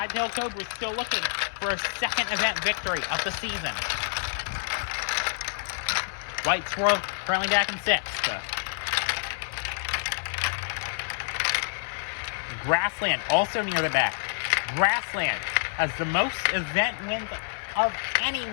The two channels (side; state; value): right; silent; 60 dB below the other